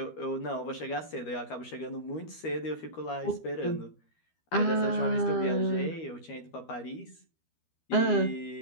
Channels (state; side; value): late; right; 13 ms